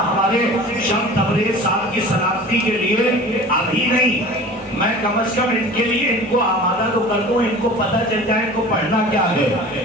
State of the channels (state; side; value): normal; both; correlation 0.40